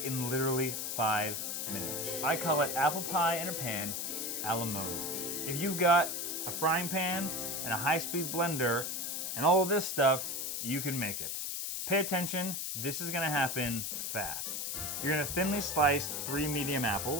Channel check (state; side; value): noise; left; hiss, 3 dB below the sound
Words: in literally 5 minutes. I call it apple pie in a pan a la mode. If you've got a frying pan and a high-speed blender and all of this stuff, you can make it. Pay attention, this is gonna happen fast. You're gonna thinly slice 3 medium